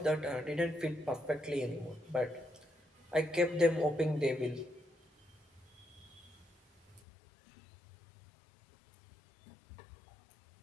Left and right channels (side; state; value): right; drops out; at 7.0 s